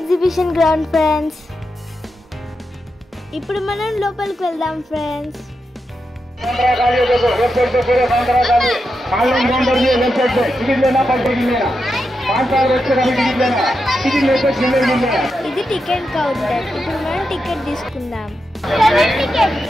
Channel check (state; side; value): normal; both; correlation 0.87